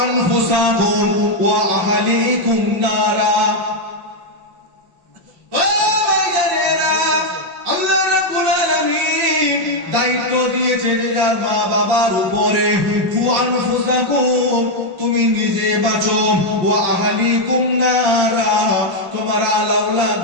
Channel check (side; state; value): left; late; 5.8 ms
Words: আনফুসাকুম ওয়া আহলিকুম নারা। ও ভাইজানেরা, আল্লাহ রাব্বুল আলামিন দায়িত্ব দিয়েছে যার মা বাবার উপরে। কু আনফুসাকুম, তুমি নিজে বাঁচো, ওয়া আহলিকুম নারা, তোমার আলাউলাদ